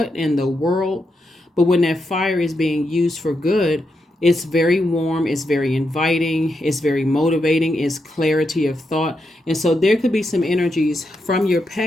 in the world? But when that fire is being used for good, it's very warm, it's very inviting, it's very motivating, it's clarity of thought. And so there could be some energies from your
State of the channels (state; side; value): normal; both; correlation 0.84